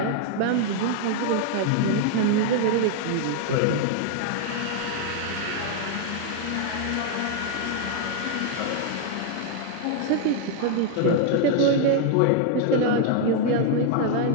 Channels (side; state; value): both; different; correlation 0.00